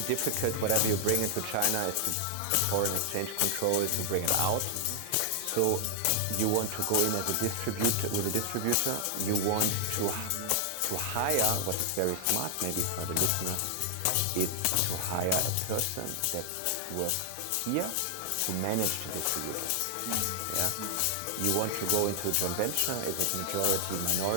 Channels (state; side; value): different; both; correlation 0.00